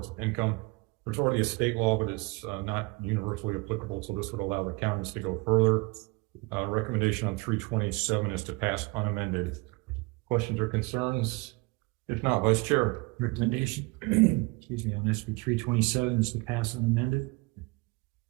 of income. There's already a state law, but it's not universally applicable, so this would allow the counties to go further. Recommendation on 327 is to pass unamended. Questions or concerns? If not, Vice Chair. Recommendation, excuse me, on SB 327 is to pass unamended.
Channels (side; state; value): left; quieter; 25.7 dB